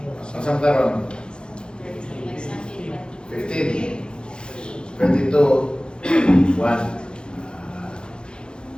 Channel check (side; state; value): right; late; 0.050 ms